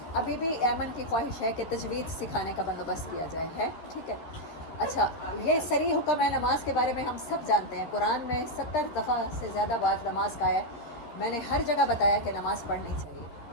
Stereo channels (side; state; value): right; late; 13 ms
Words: ابھی بھی ایمن کی خواہش ہے کہ تجوید سکھانے کا بندوبست کیا جائے، ہے ٹھیک ہے. اچھا، یہ صریح حکم ہے نماز کے بارے میں، ہم سب جانتے ہیں. قرآن میں 70 دفعہ سے زیادہ بار نماز کا ہے. میں نے ہر جگہ بتایا کہ نماز پڑھنی چاہیے،